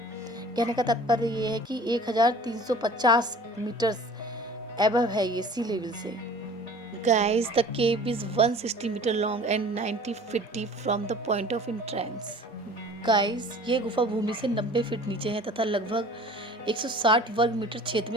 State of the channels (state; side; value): normal; both; correlation 0.46